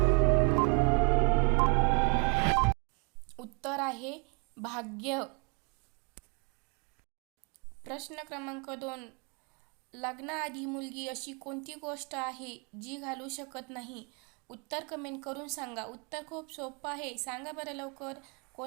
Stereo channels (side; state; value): left; quieter; 31.9 dB